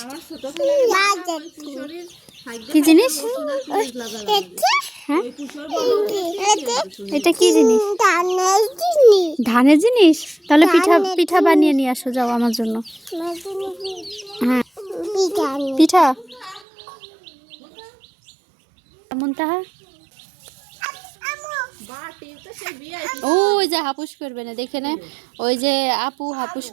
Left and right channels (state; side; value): drops out; left; at 16.6 s